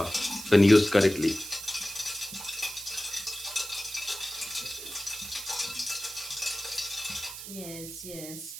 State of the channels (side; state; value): right; noise; hiss, 10 dB below the sound